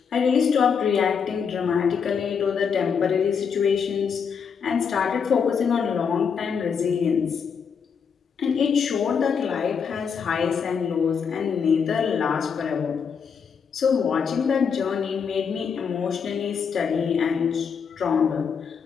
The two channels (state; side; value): quieter; right; 6.5 dB